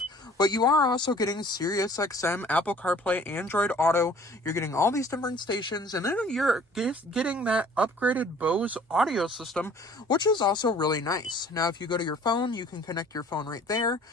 but you are also getting Sirius XM, Apple CarPlay, Android Auto. You're getting all these different stations, and then you're getting that upgraded Bose audio system, which is also really nice. Now, if you go to your phone, you can connect your phone right there.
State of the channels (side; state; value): both; normal; correlation 0.52